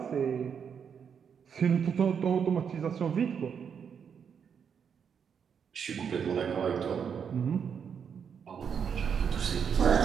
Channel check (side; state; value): left; quieter; 7.2 dB